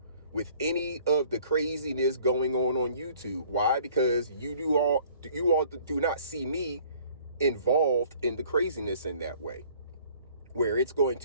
with any of the craziness going on YouTube. Why? Because you all do not see me involved in the craziness in that way, where it's going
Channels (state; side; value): inverted; both; correlation -0.55